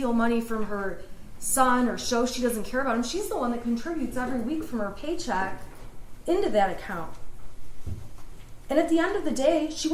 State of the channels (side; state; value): both; identical; correlation 1.00